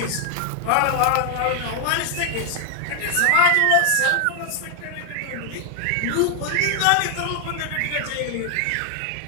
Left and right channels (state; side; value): different; both; correlation 0.00